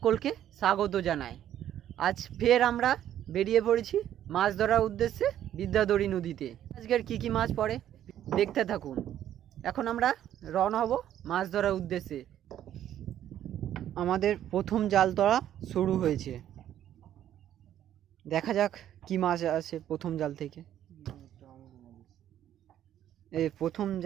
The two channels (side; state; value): left; quieter; 11.3 dB